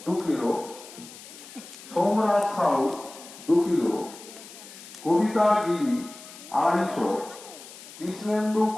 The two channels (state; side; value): noise; left; hiss, 17 dB below the sound